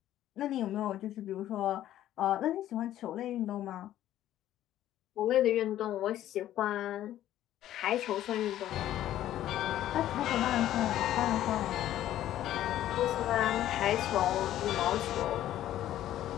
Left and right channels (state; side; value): quieter; right; 12.7 dB